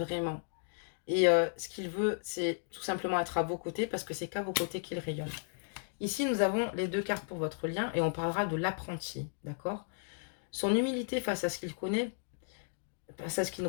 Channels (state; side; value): silent; right; digital silence